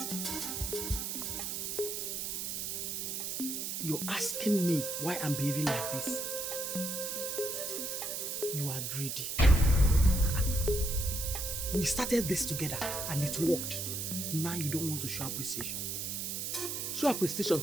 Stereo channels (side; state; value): right; noise; hiss, 3 dB below the sound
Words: You're asking me why I'm behaving like this. You are greedy. We started this together and it worked. Now you don't want to show appreciation. Show